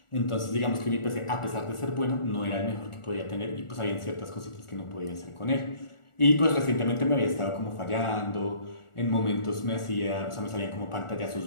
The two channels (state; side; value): late; right; 1.4 ms